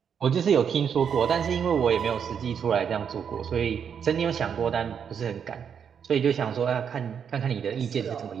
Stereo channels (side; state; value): left; quieter; 7.5 dB